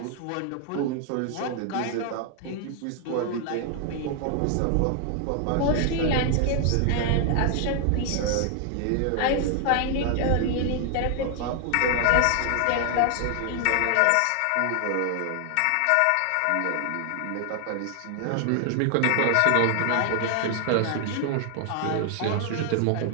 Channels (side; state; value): both; different; correlation 0.00